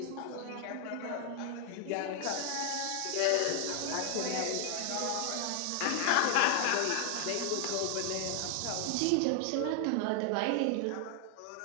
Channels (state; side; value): different; both; correlation 0.00